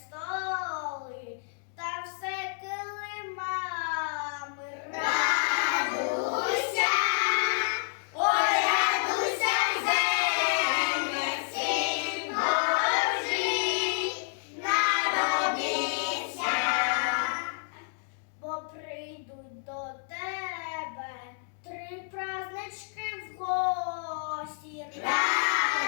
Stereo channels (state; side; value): silent; right; digital silence